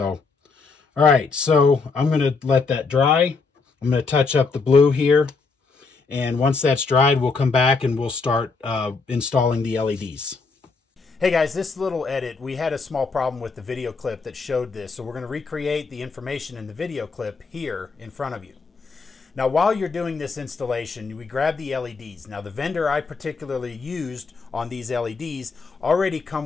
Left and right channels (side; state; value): right; quieter; 4.4 dB